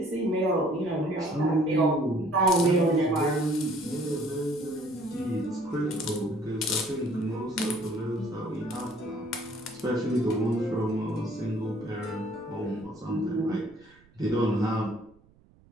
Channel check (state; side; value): noise; right; rumble, 29 dB below the sound